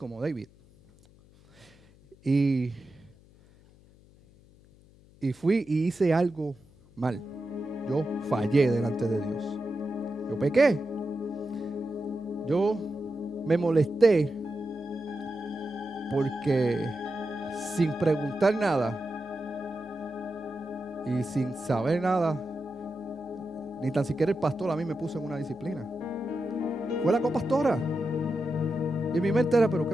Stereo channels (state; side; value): noise; left; hum, 26 dB below the sound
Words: David. Y fui y hice algo mal. Yo fallé delante de Dios. Yo pequé. Yo me molesté porque sin preguntar nada y sin saber nada, ni tan siquiera el pastor a mí me puso en una disciplina. Fue la copastora. Y en mi mente era, pero qué